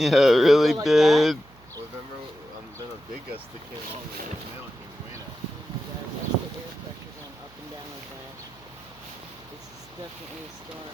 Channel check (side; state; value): right; noise; hum, 26 dB below the sound